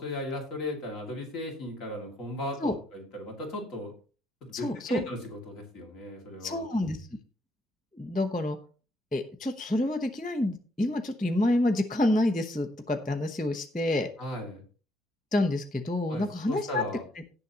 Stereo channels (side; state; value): both; normal; correlation 0.73